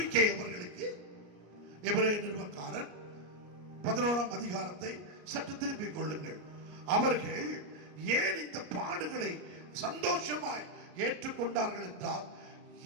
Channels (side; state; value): left; late; 34 ms